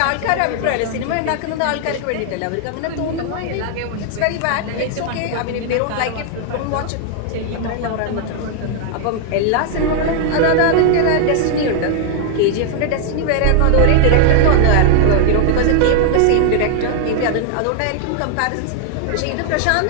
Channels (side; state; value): both; different; correlation 0.00